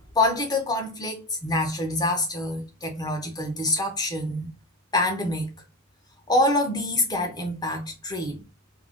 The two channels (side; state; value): both; normal; correlation 0.21